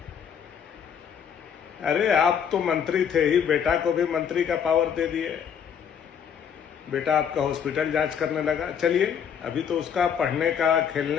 अरे आप तो मंत्री थे ही, बेटा को भी मंत्री का पावर दे दिए। बेटा आपका हॉस्पिटल जांच करने लगा। चलिए, अभी तो उसका पढ़ने का,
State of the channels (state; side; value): quieter; right; 7.9 dB